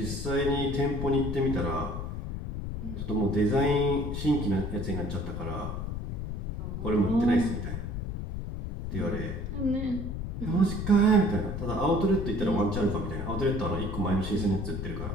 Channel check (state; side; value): noise; left; rumble, 5 dB below the sound